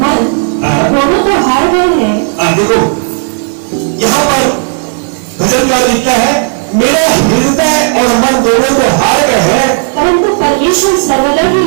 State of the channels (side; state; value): left; silent; 63 dB below the other